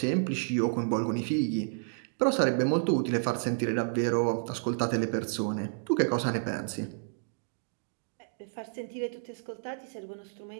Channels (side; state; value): left; silent; digital silence